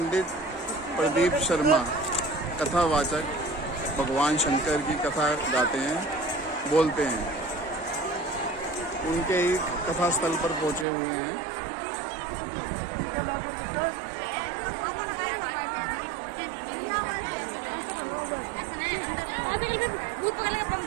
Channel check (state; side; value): drops out; left; at 10.9 s